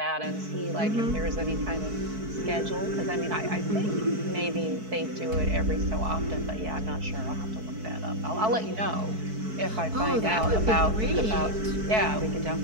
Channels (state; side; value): late; left; 4.6 ms